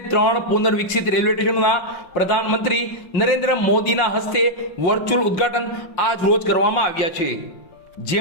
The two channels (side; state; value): right; late; 5.7 ms